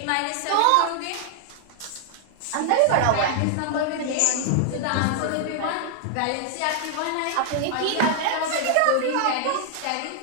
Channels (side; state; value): both; different; correlation 0.00